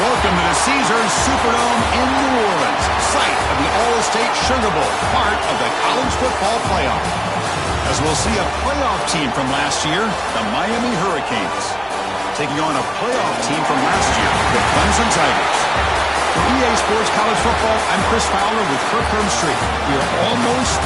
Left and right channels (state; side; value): identical; both; correlation 1.00